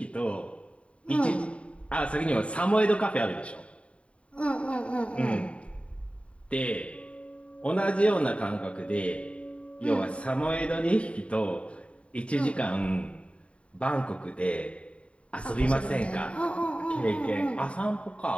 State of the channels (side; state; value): right; late; 0.062 ms